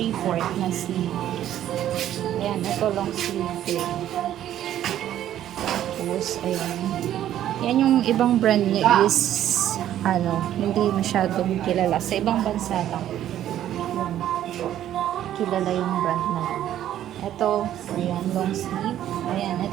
na sleeve. Ayan. Ito long sleeve din. Tapos, ayan. Yan yung ibang brand niya is ano, hindi masyadong kilala. Sa ibang bansa lang. Kilala yung brand na yun. Ito, ayan, long sleeve. Ayan,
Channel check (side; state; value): left; quieter; 11.7 dB